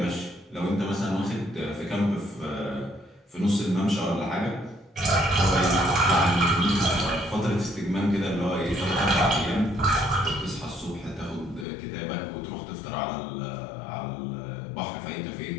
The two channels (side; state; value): right; drops out; at 11.7 s